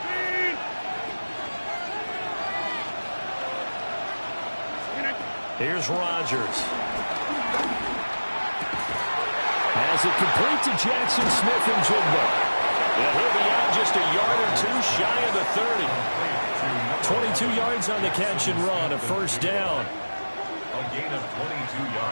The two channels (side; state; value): both; inverted; correlation -1.00